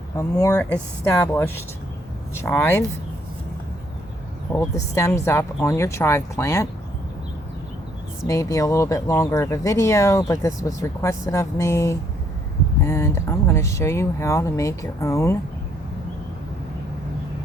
a more established chive. Hold the stems up on your chive plant. This may be a little bit longer of a video, but this was requested of me, and I'm going to show you how to make your own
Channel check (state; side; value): normal; both; correlation 0.68